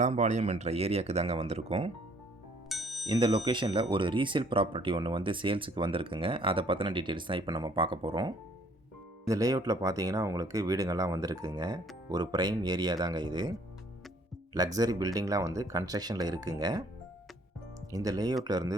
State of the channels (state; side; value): normal; both; correlation 0.60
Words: என்ற ஏரியாவுக்கு தாங்க வந்திருக்கோம். இந்த லொக்கேஷனில் ஒரு ரீசேல் ப்ராப்பர்ட்டி ஒன்று சேல்ஸுக்கு வந்திருக்குங்க. அதை பற்றின டீட்டெயில்ஸ் தான் இப்போ நம்ம பார்க்க போகிறோம். இந்த லேஅவுட்டில் பார்த்தீங்கன்னா உங்களுக்கு வீடுங்கள்லாம் வந்திருக்குங்க. ஒரு ப்ரைம் ஏரியா தாங்க இது. லக்ஸரி பில்டிங்லாம் கன்ஸ்ட்ரக்ஷனில் இருக்குங்க. இந்த லேஅவுட்டில் இருந்து